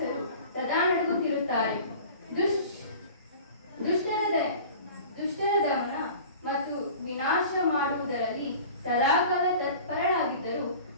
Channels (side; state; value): both; inverted; correlation -0.41